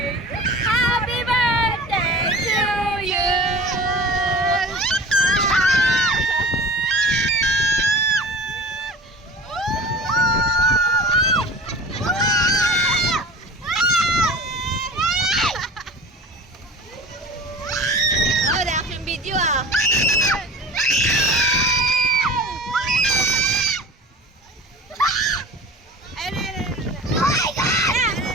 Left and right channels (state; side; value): normal; both; correlation 0.38